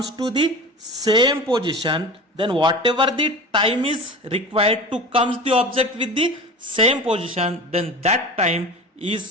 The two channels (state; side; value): normal; both; correlation 0.33